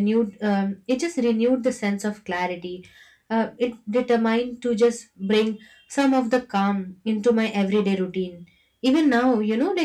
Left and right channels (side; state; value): both; identical; correlation 1.00